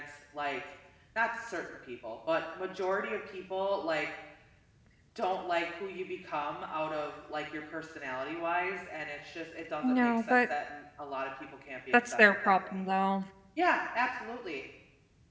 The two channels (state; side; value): identical; both; correlation 1.00